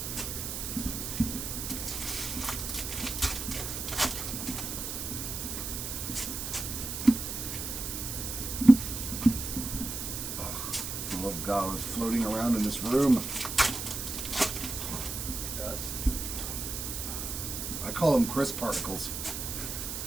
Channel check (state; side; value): noise; right; hiss, 5 dB below the sound